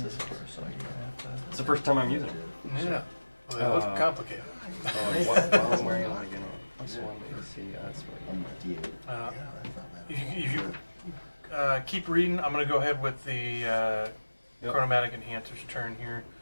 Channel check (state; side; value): inverted; both; correlation -1.00